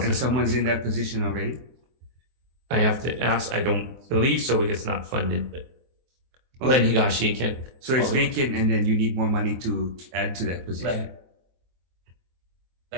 And someone's in that position already? I have to ask. I don't believe so because it's not funded, but Len Higashi can. So it's vacant and then you need more money to add to that position.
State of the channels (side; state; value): left; late; 23 ms